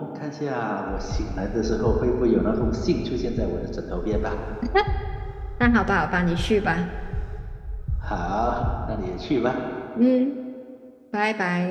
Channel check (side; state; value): both; identical; correlation 1.00